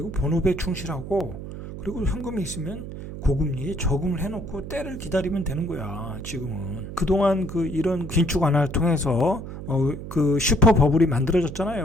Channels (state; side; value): noise; right; hum, 10 dB below the sound